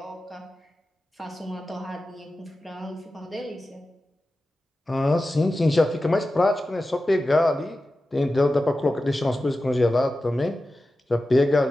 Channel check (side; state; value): both; normal; correlation 0.93